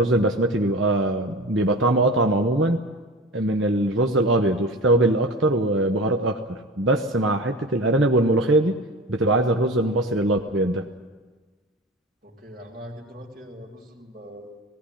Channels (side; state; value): both; normal; correlation 0.33